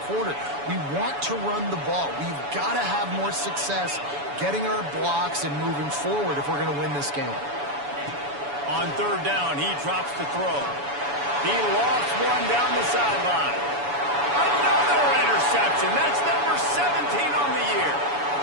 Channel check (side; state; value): left; late; 7.0 ms